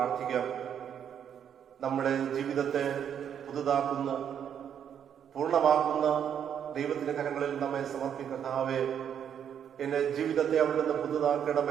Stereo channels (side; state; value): left; quieter; 8.7 dB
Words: നമ്മുടെ ജീവിതത്തെ പുതുതാക്കുന്ന, പൂർണ്ണമാക്കുന്ന ദൈവത്തിന്റെ കരങ്ങളിൽ നമ്മെ സമർപ്പിക്കർത്താവേ, എന്റെ ജീവിതത്തെ അവിടുന്ന്